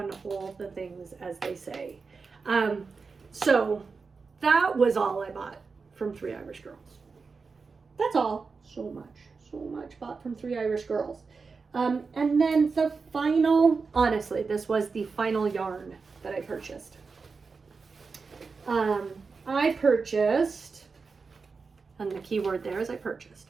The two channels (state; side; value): quieter; left; 4.7 dB